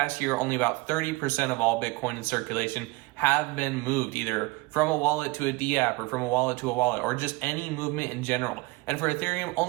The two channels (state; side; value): quieter; left; 23.2 dB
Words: year, only about 30% of all Bitcoin in circulation have been moved, either from a wallet to a DApp or from a wallet to a wallet, or just any movement in general. And for Ethereum,